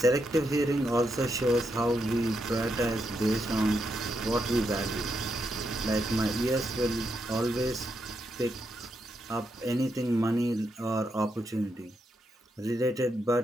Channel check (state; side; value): normal; both; correlation 0.82